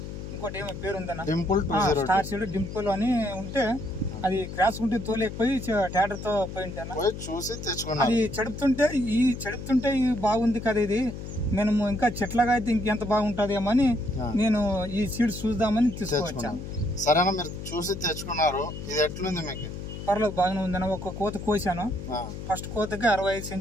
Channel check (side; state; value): left; noise; hum, 9 dB below the sound